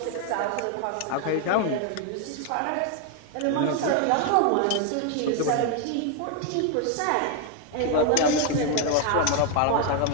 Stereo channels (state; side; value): different; both; correlation 0.01